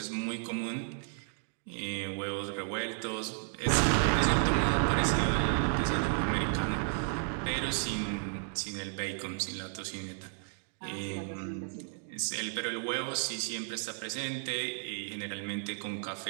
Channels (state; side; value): silent; left; 56 dB below the other